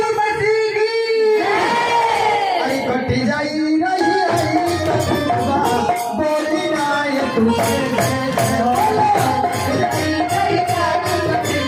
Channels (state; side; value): identical; both; correlation 1.00